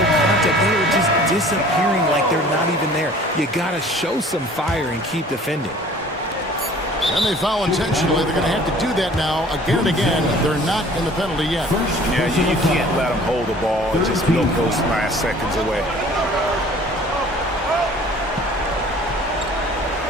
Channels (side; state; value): both; normal; correlation 0.50